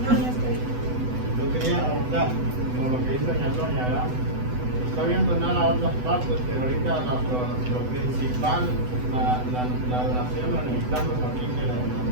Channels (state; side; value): late; left; 8.0 ms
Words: Yo quería preguntar, como lo que dice doña Antonia, ¿verdad? Está viendo nada a otras partes, pero ahorita lo principal, la donación la necesitamos aquí, que